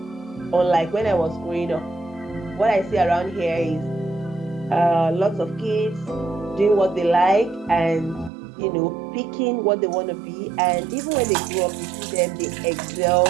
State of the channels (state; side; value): drops out; left; at 8.3 s